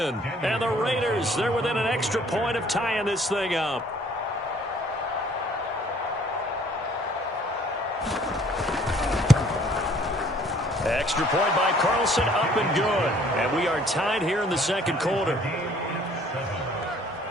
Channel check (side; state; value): both; normal; correlation 0.58